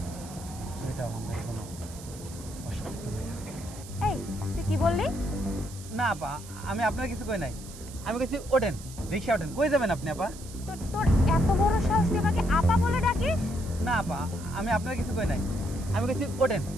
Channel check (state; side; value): noise; right; hiss, 16 dB below the sound